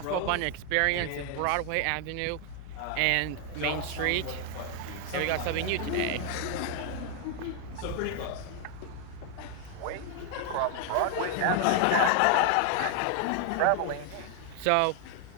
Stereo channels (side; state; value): both; different; correlation 0.00